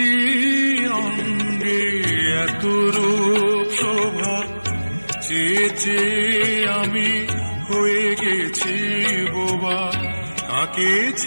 অঙ্গে এত রূপ শোভা, চেয়ে চেয়ে আমি হয়ে গেছি বোবা। কাকে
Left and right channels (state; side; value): inverted; both; correlation -1.00